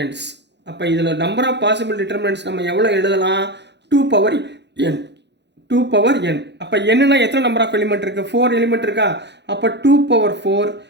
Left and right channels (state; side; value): late; left; 0.50 ms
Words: அப்போ இதில் நம்பர் ஆஃப் பாசிபிள் டிட்டர்மினன்ட்ஸ் நம்ம எவ்வளோ எழுதலாம்? 2n. 2n. அப்போ என்னன்னா எத்தனை நம்பர் ஆஃப் எலிமெண்ட் இருக்குது? 4 எலிமெண்ட் இருக்கா? அப்போ 2/4